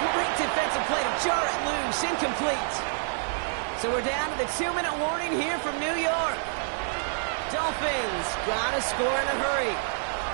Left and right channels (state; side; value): silent; left; digital silence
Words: great defensive play to jar it loose. Incomplete. So we're down to the 2-minute warning here from New York. Dolphins got to score in a hurry.